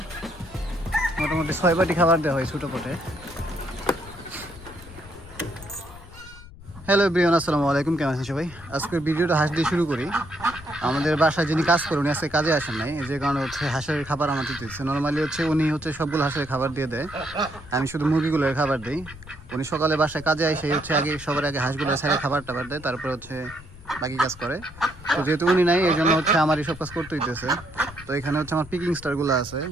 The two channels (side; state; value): left; noise; rumble, 18 dB below the sound